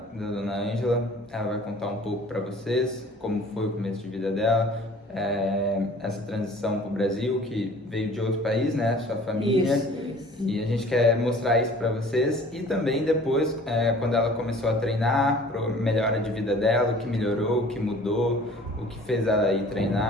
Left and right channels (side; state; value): both; normal; correlation 0.49